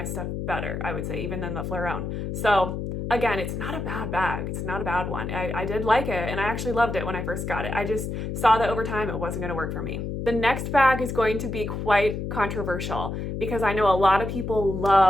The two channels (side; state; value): left; noise; hum, 4 dB below the sound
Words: stuff better, I would say, even than the Fleuron. So again, it's not a bad bag. It's not a bad one. I did like it, and I actually loved it when I first got it. I just saw that over time it wasn't going to work for me. The next bag is going to be quite controversial because I know a lot of people